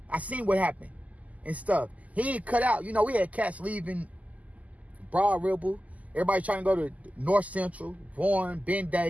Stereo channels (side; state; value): left; late; 0.075 ms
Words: I seen what happened and stuff. He ain't cut out. We had cats leaving Broad Ripple. Everybody trying to go to North Central, Warren, Ben